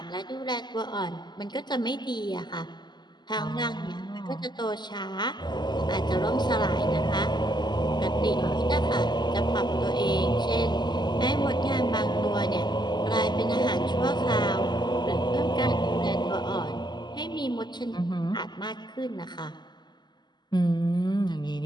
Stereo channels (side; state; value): right; late; 0.21 ms